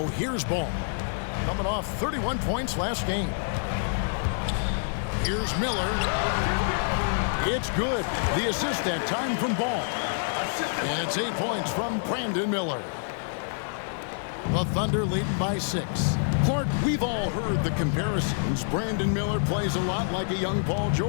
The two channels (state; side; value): silent; right; digital silence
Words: here's Ball. Coming off 31 points last game. Here's Miller. It's good. The assist that time from Ball. And it's 8 points from Brandon Miller. The Thunder leading by 6. Clark, we've all heard the comparisons. Brandon Miller plays a lot like a young Paul